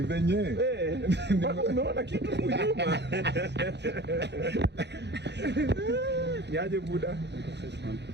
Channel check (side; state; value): left; late; 0.50 ms